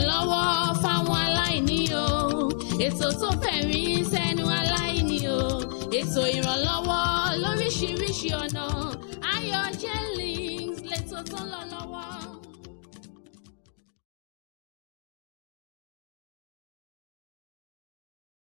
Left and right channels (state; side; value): silent; right; digital silence